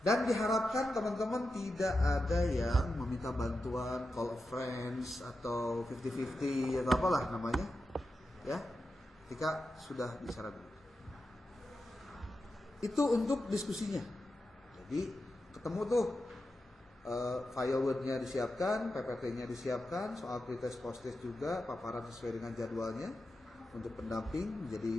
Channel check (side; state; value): both; normal; correlation 0.90